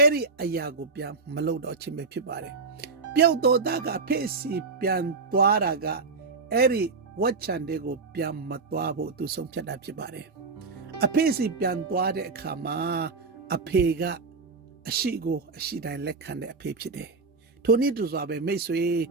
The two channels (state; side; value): quieter; left; 4.3 dB